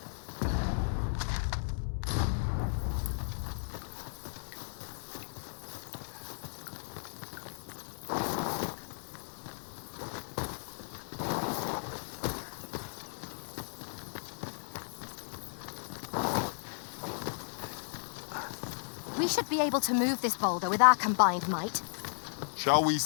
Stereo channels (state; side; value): silent; right; digital silence